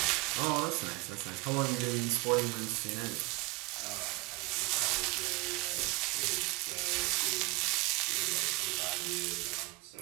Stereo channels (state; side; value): quieter; left; 24.2 dB